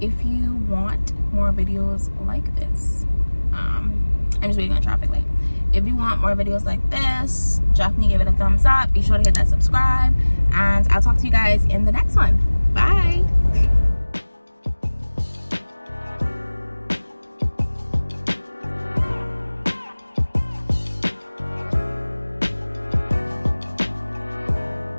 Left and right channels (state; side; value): inverted; both; correlation -1.00